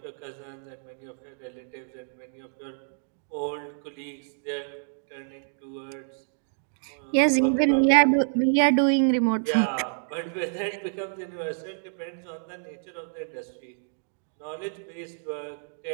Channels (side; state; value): left; silent; digital silence